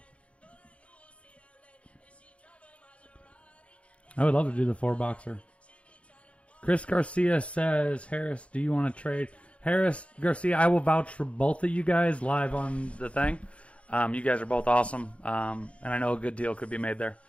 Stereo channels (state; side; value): late; right; 0.062 ms